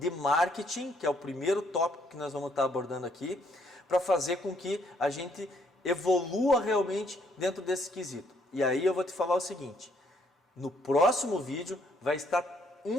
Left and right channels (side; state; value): both; normal; correlation 0.69